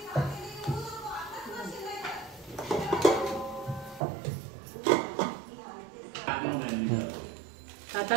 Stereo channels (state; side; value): drops out; left; at 4.0 s